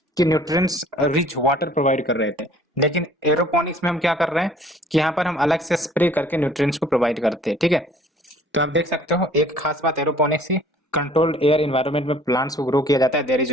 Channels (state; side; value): normal; both; correlation 0.54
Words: कि न्यूट्रिएंट्स रिच वाटर प्रोवाइड कर रहे थे, लेकिन एरोपोनिक्स में हम क्या कर रहे हैं कि यहाँ पर हम अलग से स्प्रे करके न्यूट्रिएंट्स को प्रोवाइड करते हैं, ठीक है। तो आप देख सकते हो एक खास बात एरोपोनिक्स की, कंट्रोल्ड एयर एनवायरनमेंट में प्लांट्स को ग्रो किया जाता है, there is